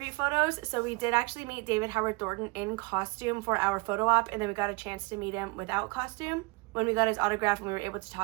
photos. So we did actually meet David Howard Thornton in costume for our photo op, and then we got a chance to meet him without costume when we got his autograph and we were able to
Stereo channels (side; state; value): left; quieter; 27.1 dB